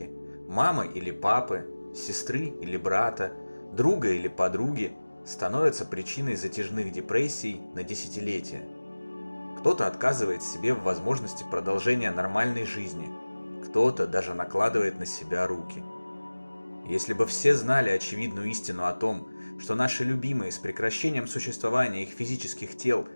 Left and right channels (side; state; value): both; inverted; correlation -1.00